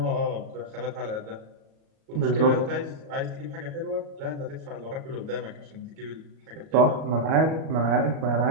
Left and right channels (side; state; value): left; late; 37 ms